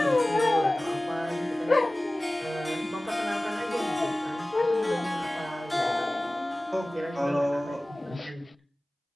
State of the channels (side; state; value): both; normal; correlation 0.98